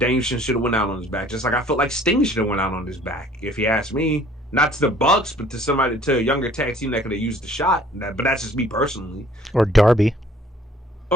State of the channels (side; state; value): both; normal; correlation 0.55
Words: should have went out on his back, just like I felt like Sting should have went out on his back. If you ask me, not to the Bucks, but to a younger tag team that could have used the shot. But that's just me personally. Or Darby.